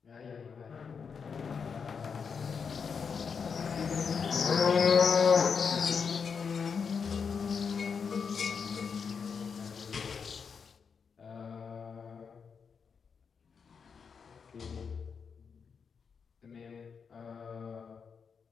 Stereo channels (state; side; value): quieter; right; 6.0 dB